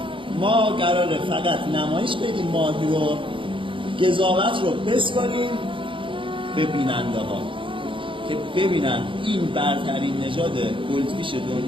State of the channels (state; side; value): late; left; 0.25 ms